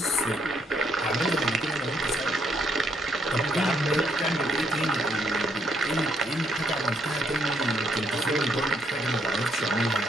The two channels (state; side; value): normal; both; correlation 0.72